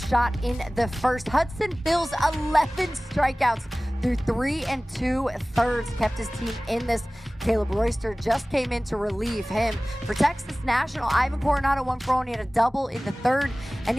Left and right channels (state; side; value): normal; both; correlation 0.98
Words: in the first. Hudson Bills 11 strikeouts through 3 2/3, kept his team in this. Caleb Royster just came in to relieve him. For Texas National, Ivan Coronado 1 for 1. He had a double in the third. And